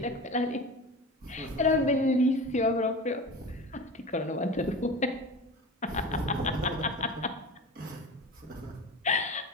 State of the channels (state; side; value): normal; both; correlation 0.32